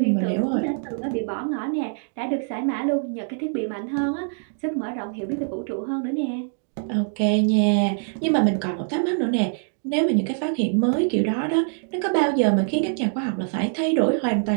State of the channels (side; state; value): left; silent; digital silence